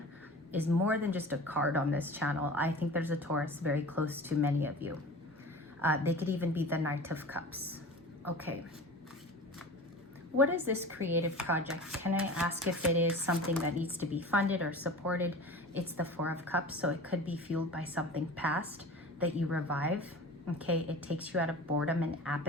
is more than just a card on this channel. I think there's a Taurus very close to many of you. They could even be the Knight of Cups. Okay. What is this creative project? Can I ask if it is something that needs to be funded or supported? It's the 4 of Cups, so it could be fueled by something past that you revive. Okay, it takes you out of boredom and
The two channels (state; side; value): normal; both; correlation 0.37